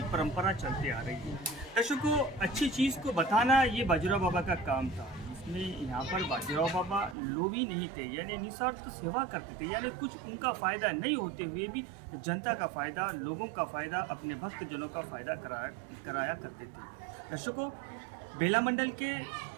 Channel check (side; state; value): left; drops out; at 7.2 s